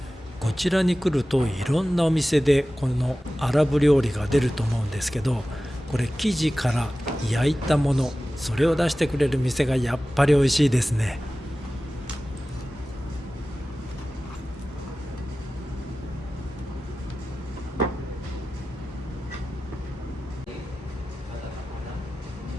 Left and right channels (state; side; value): normal; both; correlation 0.96